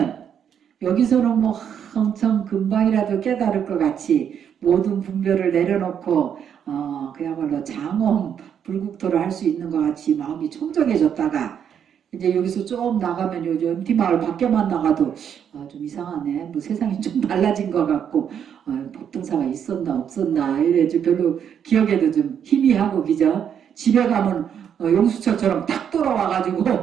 여기서는 뭐 엄청 금방이라도 깨달을 것 같이 모든 분별을 내려놓고 그야말로 장엄 불국토를 할 수 있는 것 같이 마음이 청정해졌다가 이제 여기서 좀 나가면 요즘 MT마을 밖에만 나가도 좀 이상하네. 뭐 세상이 좀 달라진 것 같고 법등사가 있었나 없었나 이래 좀 별로 기억에도 좀 희미하고 그죠? 집에 가면 용수철처럼 딱 돌아와가지고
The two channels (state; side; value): quieter; left; 8.4 dB